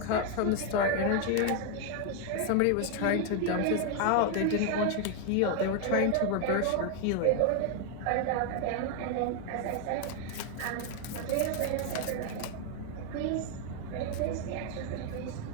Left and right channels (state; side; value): different; both; correlation 0.00